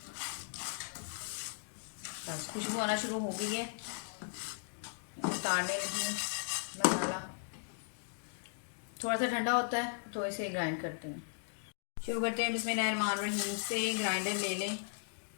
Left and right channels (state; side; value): silent; right; digital silence